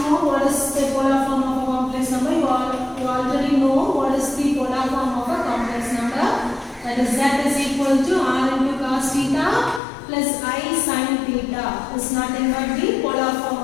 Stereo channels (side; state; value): right; drops out; at 9.8 s